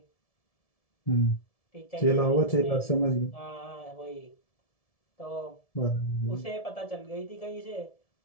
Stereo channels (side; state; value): right; late; 1.7 ms